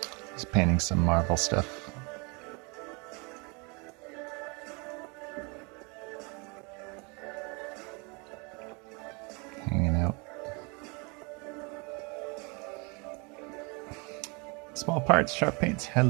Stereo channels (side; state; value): left; quieter; 30.7 dB